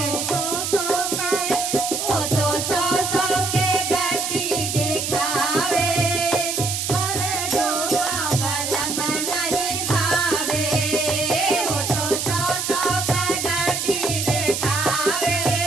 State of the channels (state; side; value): noise; right; hiss, 2 dB below the sound